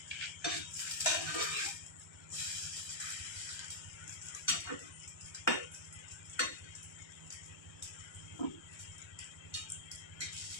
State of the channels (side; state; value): right; late; 1.3 ms